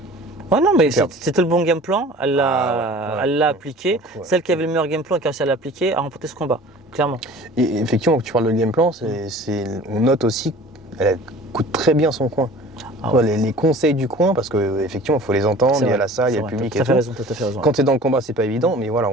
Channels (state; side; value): normal; both; correlation 0.44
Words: non, mais c'était le bon game plan. Elle l'a appliqué. Celle qui avait le meilleur game plan et qui a réussi à l'appliquer a remporté ce combat, clairement. Et effectivement, quand tu parles de game plan, on note aussi qu'elle coûte très bien son coin. Les conseils du coin, parce qu'effectivement, il faut les entendre, il y a la salle, il y a le public et tout. Tout à fait raison. Quand tu es dans le combat, c'est pas évident, mais